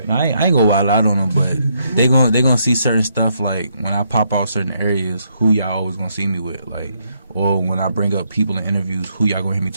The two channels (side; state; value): both; inverted; correlation -0.75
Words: I ain't gonna wild out on them, but they gonna see certain stuff like when I pop out certain areas, who y'all always gonna see me with, like, or when I bring up people in interviews, who y'all gonna hear me